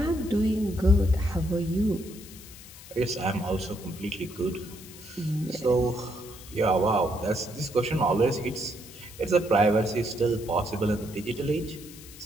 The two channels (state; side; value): noise; left; hiss, 17 dB below the sound